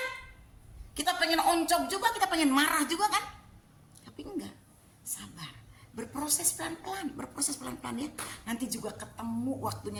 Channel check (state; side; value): identical; both; correlation 1.00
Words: Kita pengen oncok juga, kita pengen marah juga kan? Tapi enggak, sabar. Berproses pelan-pelan ya. Nanti juga ketemu